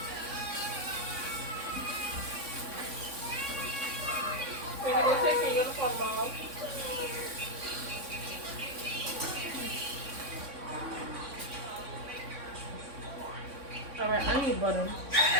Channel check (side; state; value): left; late; 3.6 ms